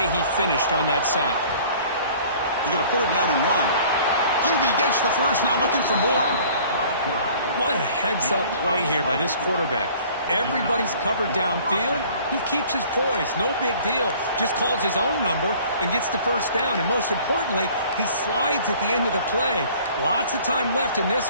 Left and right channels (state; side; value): inverted; both; correlation -0.51